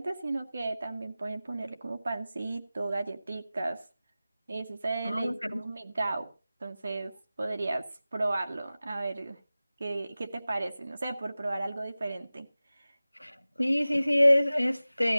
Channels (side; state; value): both; inverted; correlation -0.97